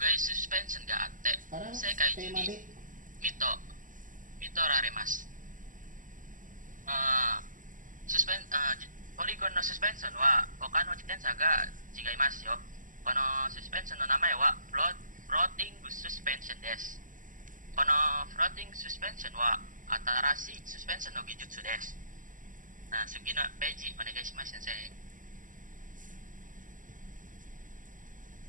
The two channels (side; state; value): left; late; 0.38 ms